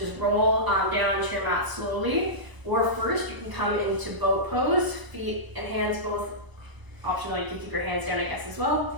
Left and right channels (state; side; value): late; left; 1.0 ms